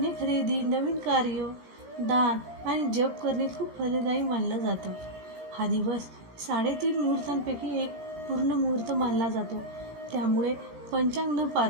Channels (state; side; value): late; left; 18 ms